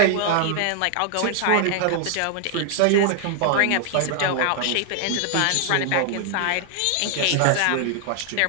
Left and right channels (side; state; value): both; different; correlation 0.00